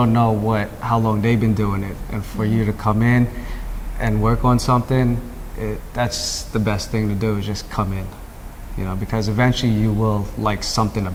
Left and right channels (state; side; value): identical; both; correlation 1.00